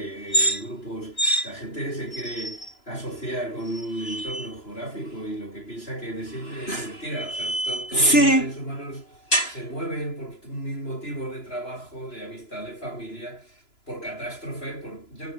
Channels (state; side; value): late; right; 2.9 ms